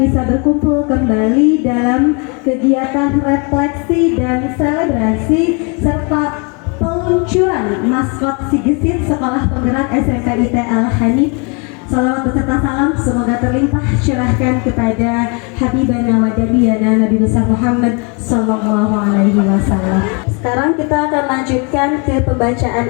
bisa berkumpul kembali dalam kegiatan refleksi dan selebrasi serta peluncuran maskot Si Gesit Sekolah Penggerak SMP IT Al-Hanif. Salawat beserta salam semoga terlimpah curahkan kepada Habibana wa Nabiyana Nabi besar Muhammad Sallallahu Alaihi Wasallam. Sekarang kita akan lanjutkan ke pembacaan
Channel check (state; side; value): quieter; right; 33.7 dB